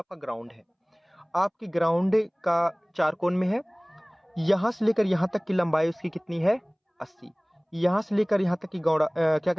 ग्राउंड है, आपकी ग्राउंड का चार कोण में है। यहाँ से लेकर यहाँ तक की लंबाई उसकी कितनी है, 80। यहाँ से लेकर यहाँ तक की क्या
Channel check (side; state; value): both; identical; correlation 1.00